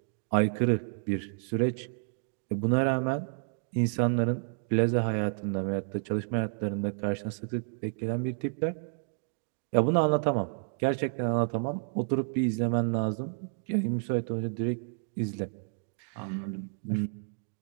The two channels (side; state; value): left; silent; digital silence